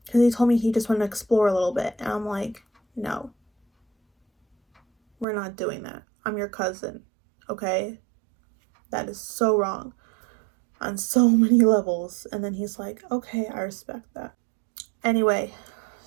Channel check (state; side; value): drops out; left; at 5.2 s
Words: he told me he just wanted to explore a little bit. And I'm like, no, we're not doing that. I'm your cousin, okay? That is so wrong on so many levels. And then he's like, okay, I respect that. Anyway,